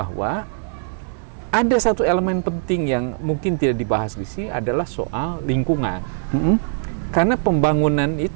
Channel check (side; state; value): left; silent; digital silence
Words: ada satu elemen penting yang mungkin tidak dibahas di sini adalah soal lingkungan. Karena pembangunan